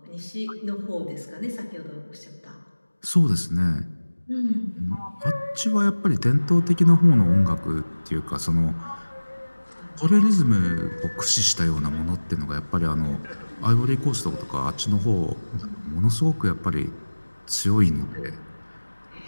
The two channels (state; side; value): inverted; both; correlation -1.00